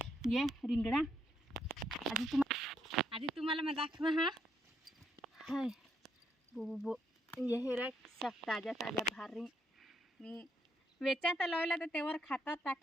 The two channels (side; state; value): both; normal; correlation 0.75